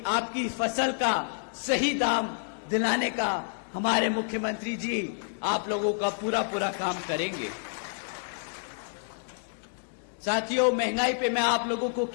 आपकी फसल का सही दाम दिलाने का हमारे मुख्यमंत्री जी आप लोगों का पूरा काम करेंगे। साथियों, महंगाई पे मैं आप लोगों को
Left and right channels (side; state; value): right; silent; digital silence